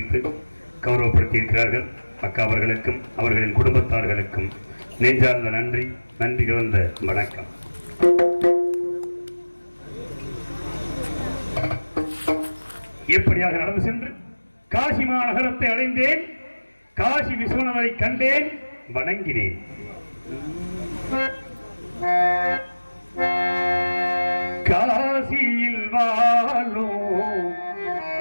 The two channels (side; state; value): both; inverted; correlation -1.00